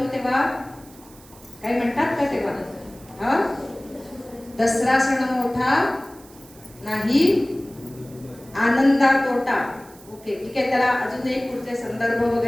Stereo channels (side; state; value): right; noise; hiss, 23 dB below the sound